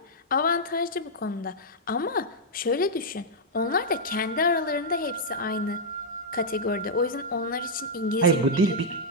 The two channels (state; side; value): normal; both; correlation -0.05